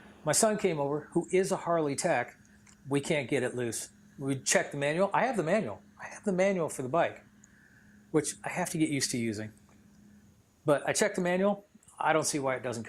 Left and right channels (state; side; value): identical; both; correlation 1.00